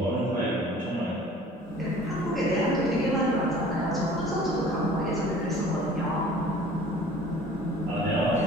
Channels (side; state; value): both; normal; correlation 0.48